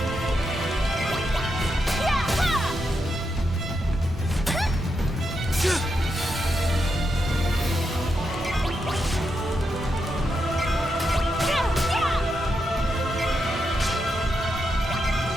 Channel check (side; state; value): both; normal; correlation 0.84